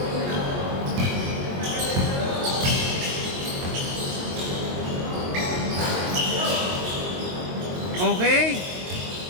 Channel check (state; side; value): late; left; 22 ms